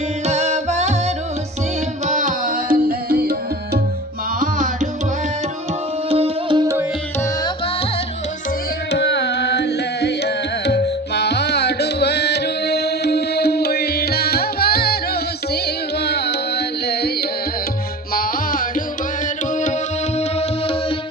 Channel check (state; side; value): normal; both; correlation 0.36